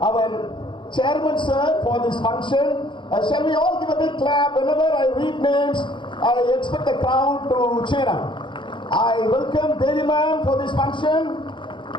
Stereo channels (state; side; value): late; right; 0.23 ms